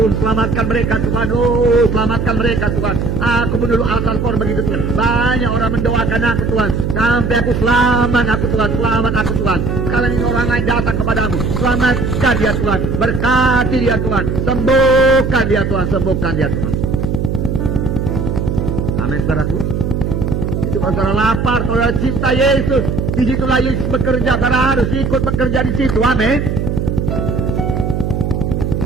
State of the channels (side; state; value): right; noise; hum, 1 dB below the sound